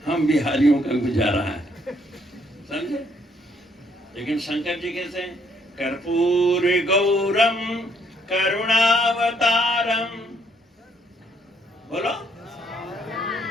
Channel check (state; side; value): normal; both; correlation 0.68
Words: हम बिहारियों का गुजारा है, समझे। लेकिन शंकर जी कैसे? कर्पूर गौरम करुणावतारम, बोलो।